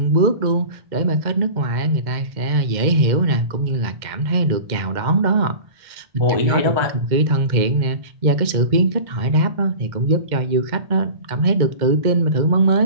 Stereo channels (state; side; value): late; left; 2.1 ms